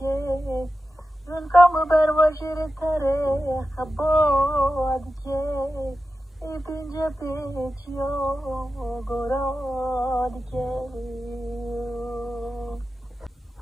زنکام بر وجر تره خباد که ای پینجا پیچیا گراد که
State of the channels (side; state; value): both; normal; correlation 0.92